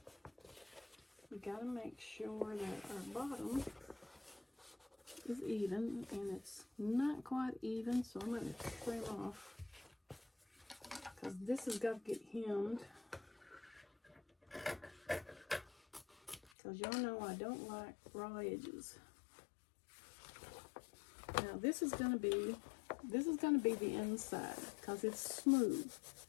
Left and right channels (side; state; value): right; drops out; at 16.5 s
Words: we got to make sure that our bottom is even, and it's not quite even, so I'm going to trim off because this has got to get hemmed, because y'all know I don't like raw edges. Now this is going to be the inside because it's smooth.